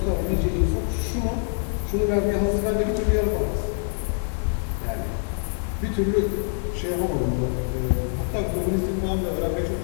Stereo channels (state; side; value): silent; right; 62 dB below the other